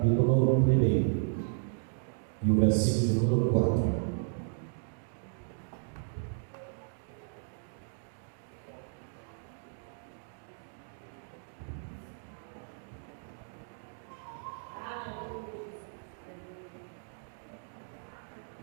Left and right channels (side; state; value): left; silent; digital silence